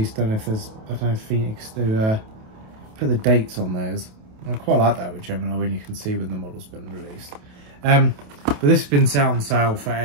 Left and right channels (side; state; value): left; late; 28 ms